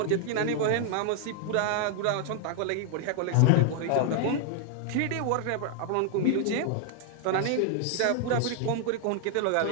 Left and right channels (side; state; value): both; different; correlation 0.00